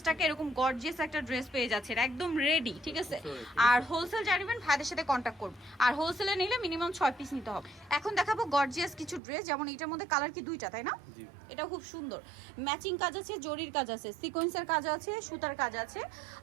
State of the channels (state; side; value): drops out; left; at 9.2 s